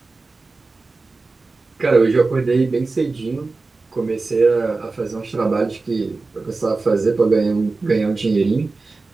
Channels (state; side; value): quieter; left; 3.7 dB